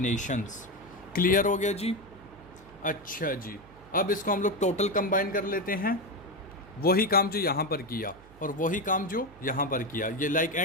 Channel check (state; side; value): noise; right; hum, 23 dB below the sound